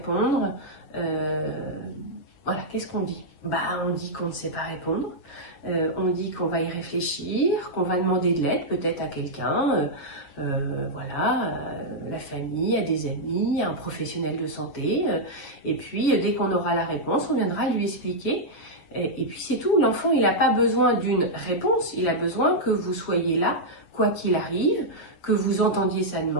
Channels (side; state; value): right; late; 7.2 ms